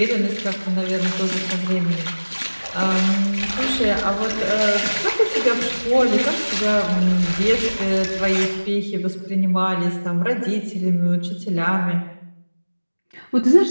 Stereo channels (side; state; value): both; inverted; correlation -1.00